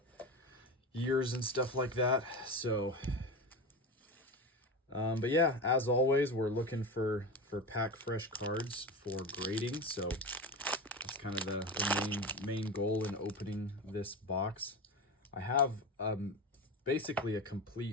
years and stuff like that. So but yeah, as always, we're looking for pack fresh cards for grading. So that's kind of the main goal in opening this box. I have basically a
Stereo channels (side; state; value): both; normal; correlation 0.23